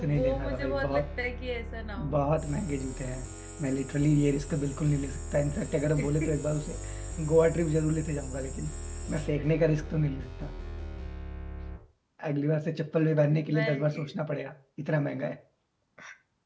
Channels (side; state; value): both; identical; correlation 1.00